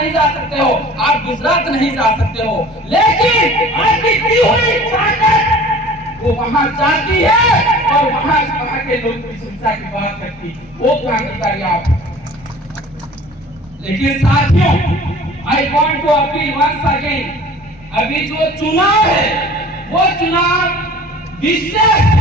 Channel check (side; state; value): both; normal; correlation 0.45